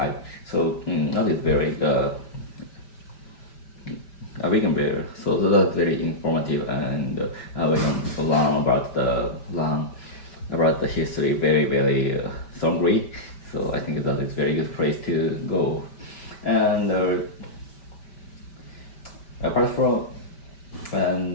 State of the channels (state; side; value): late; right; 5.1 ms